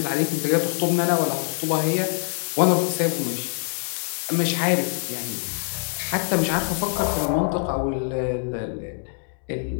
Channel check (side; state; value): right; silent; digital silence